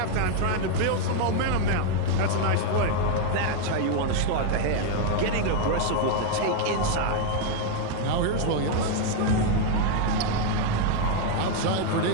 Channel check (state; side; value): different; both; correlation 0.00